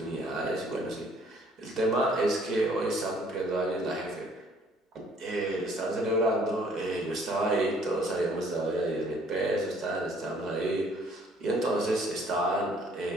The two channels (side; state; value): both; normal; correlation 0.60